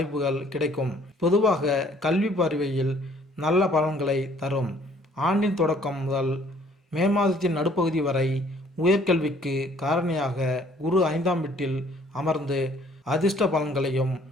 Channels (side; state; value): both; normal; correlation 0.59